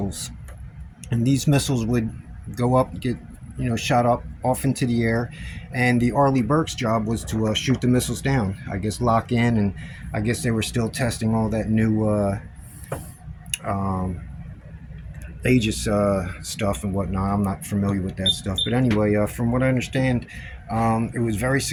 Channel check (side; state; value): both; identical; correlation 1.00